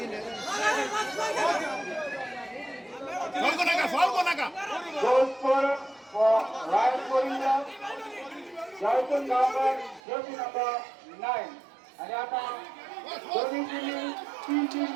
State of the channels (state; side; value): drops out; left; at 10.0 s